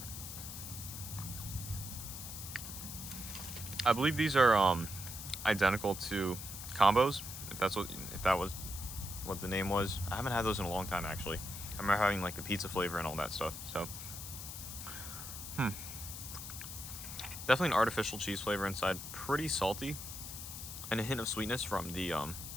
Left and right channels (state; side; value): noise; left; hiss, 9 dB below the sound